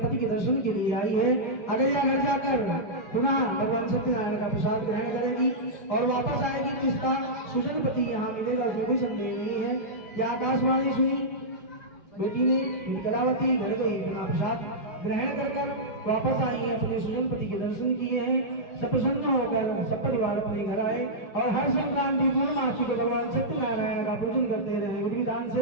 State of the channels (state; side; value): late; right; 5.4 ms